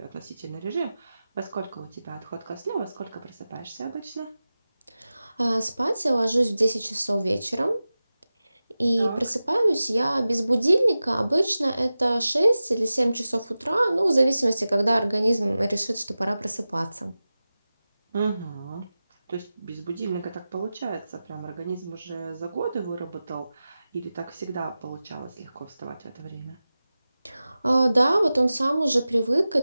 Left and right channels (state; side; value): inverted; both; correlation -0.95